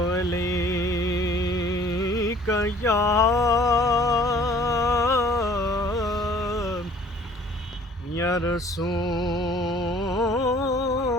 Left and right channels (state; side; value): normal; both; correlation 0.54